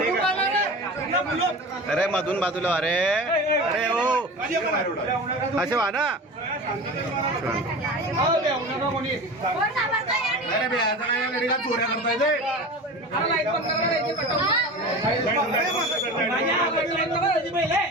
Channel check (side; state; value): both; normal; correlation 0.33